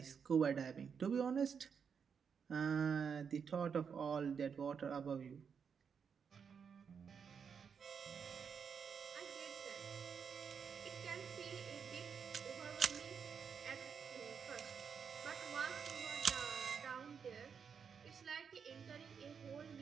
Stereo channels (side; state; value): left; quieter; 6.6 dB